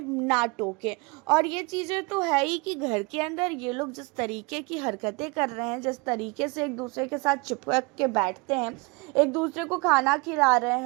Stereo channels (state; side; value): quieter; left; 27.8 dB